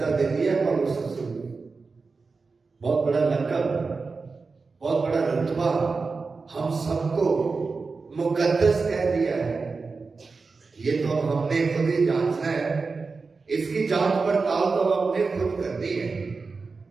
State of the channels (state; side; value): quieter; left; 4.3 dB